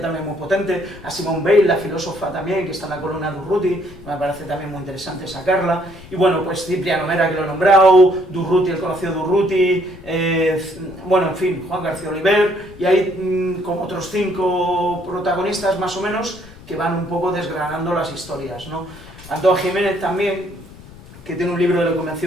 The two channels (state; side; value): noise; left; rumble, 19 dB below the sound